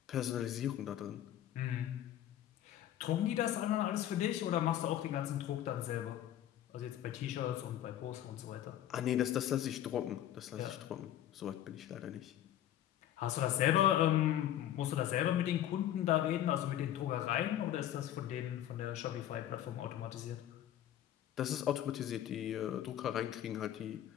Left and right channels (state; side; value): quieter; right; 11.7 dB